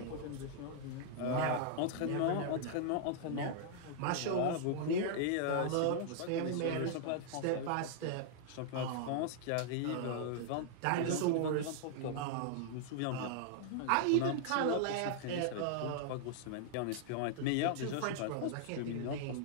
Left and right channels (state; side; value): different; both; correlation -0.01